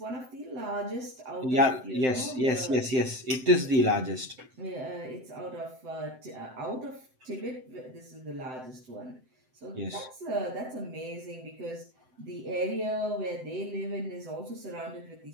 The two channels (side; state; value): left; late; 7.8 ms